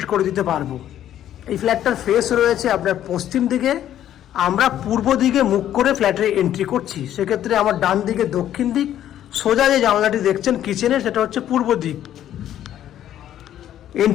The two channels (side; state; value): right; quieter; 11.4 dB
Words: করে দিতে পারবো। এই ফ্ল্যাটটার ফেস রয়েছে আপনার পশ্চিম দিকে, আমরা পূর্ব দিকে মুখ করে ফ্ল্যাটে এন্ট্রি করছি। সেক্ষেত্রে আমার ডান দিকে দক্ষিণ দিক, সোজা যে জানলাটি দেখছেন কিচেনের, সেটা হচ্ছে পূর্ব দিক।